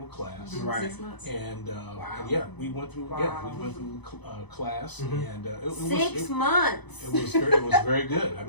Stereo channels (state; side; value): late; right; 0.99 ms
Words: class. Right. 6 months. And, Wow. and yeah, we went through Wow. class, Mhm. and it 6 months. it was very good. I